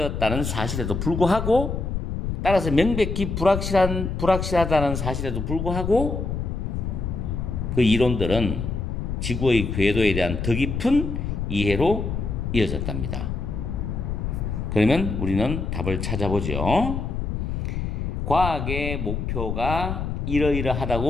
사실에도 불구하고, 따라서 명백히 불확실하다는 사실에도 불구하고 그 이론들은 지구의 궤도에 대한 더 깊은 이해로 이어졌답니다. 그러면 우리는 답을 찾아보죠. 과학의 목표가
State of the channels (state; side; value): noise; left; rumble, 3 dB below the sound